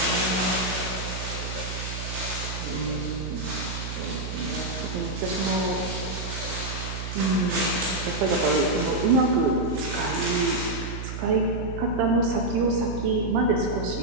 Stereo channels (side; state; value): right; noise; hum, 6 dB below the sound